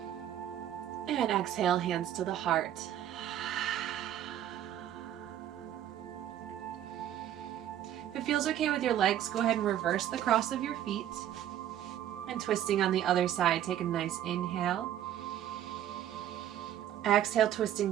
And exhale, hands to the heart. If it feels okay with your legs, go ahead and reverse the cross of your feet. And twisting on the other side, take a nice inhale. Exhale,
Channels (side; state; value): left; quieter; 11.3 dB